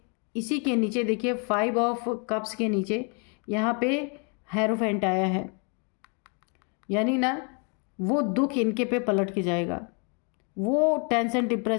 इसी के नीचे देखिए 5 ऑफ कप्स के नीचे यहाँ पे हेरोफेंट आया है, यानी ना वो दुख इनके पे पलट के जाएगा। वो टेंशन,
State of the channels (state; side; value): quieter; right; 36.8 dB